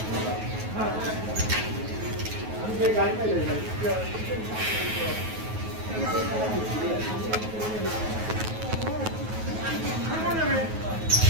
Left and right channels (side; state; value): left; late; 9.3 ms